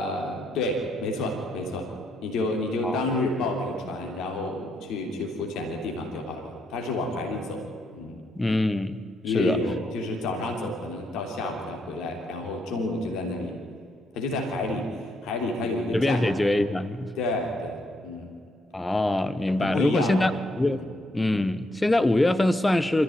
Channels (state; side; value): normal; both; correlation 0.76